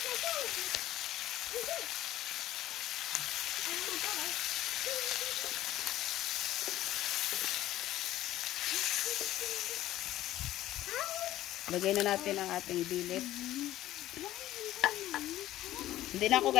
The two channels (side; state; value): right; quieter; 14.3 dB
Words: Lagay na natin ang ating bilip. Hindi na ako